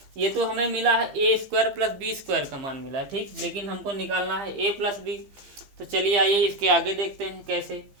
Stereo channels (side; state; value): left; late; 15 ms